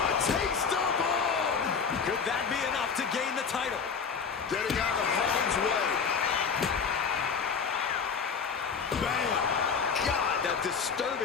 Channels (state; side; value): quieter; right; 6.0 dB